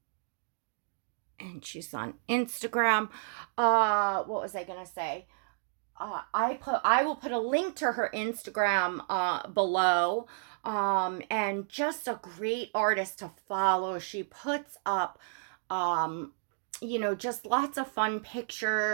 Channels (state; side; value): silent; left; digital silence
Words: And she's on Instagram. What was I gonna say? I will put a link to her Instagram below. And just a great artist to follow. She puts up just lots of fun